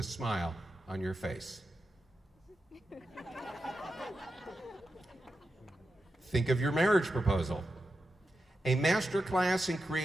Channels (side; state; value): both; normal; correlation 0.89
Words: smile on your face. Think of your marriage proposal. A master class in